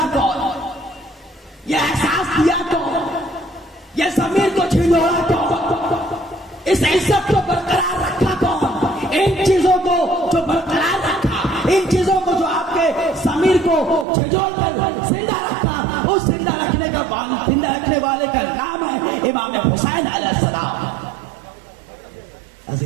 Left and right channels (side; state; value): left; drops out; at 14.1 s